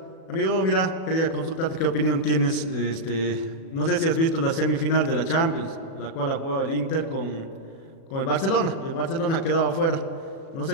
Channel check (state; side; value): late; right; 37 ms